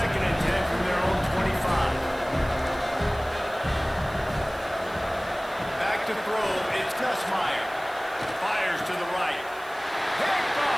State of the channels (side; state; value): right; noise; hiss, 22 dB below the sound